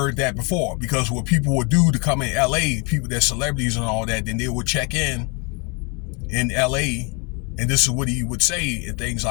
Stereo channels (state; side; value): quieter; right; 31.7 dB